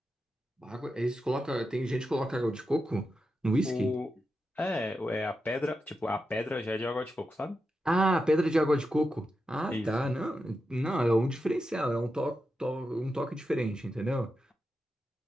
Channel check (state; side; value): normal; both; correlation 0.88